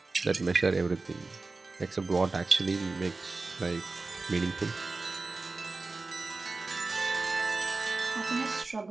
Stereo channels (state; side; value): quieter; left; 3.6 dB